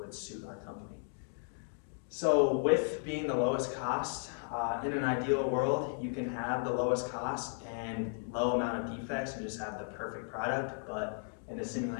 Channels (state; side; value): silent; right; 54 dB below the other